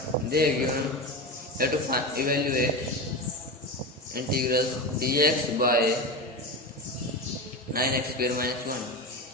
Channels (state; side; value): normal; both; correlation 0.22